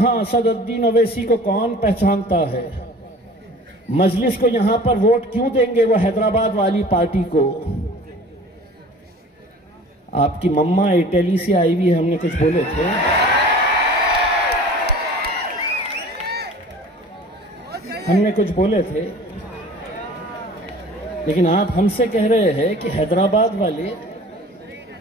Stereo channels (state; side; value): normal; both; correlation 0.44